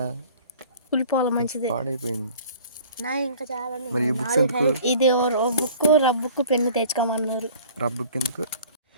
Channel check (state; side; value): inverted; both; correlation -0.49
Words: కుళ్ళిపోవాలి మంచిది, పాడైపోయింది. ఇంకా చాలా. మరి ఈ బుక్స్ ఎందుకు? ఇది రబ్బుకు పెన్ను తెచ్చుకోమన్నారు. రబ్బుక్ ఎందుకు?